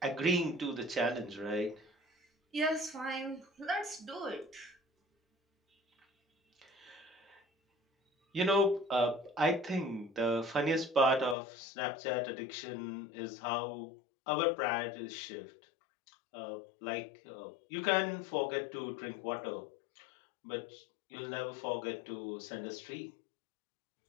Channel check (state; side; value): drops out; right; at 11.4 s